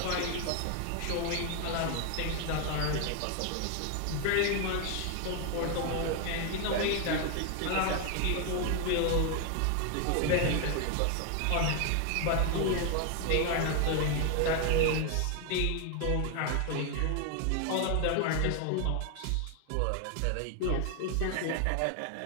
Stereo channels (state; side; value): different; both; correlation 0.00